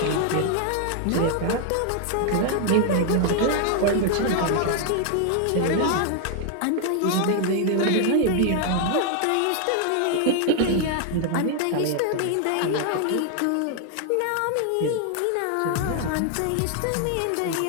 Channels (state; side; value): different; both; correlation 0.00